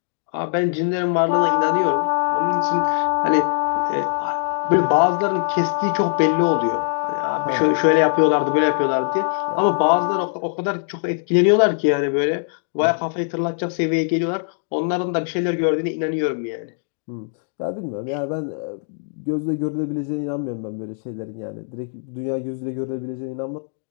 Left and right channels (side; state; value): right; silent; digital silence